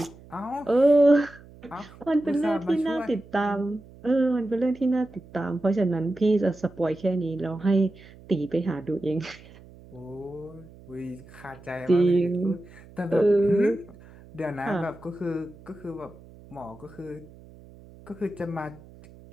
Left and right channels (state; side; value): noise; right; hum, 21 dB below the sound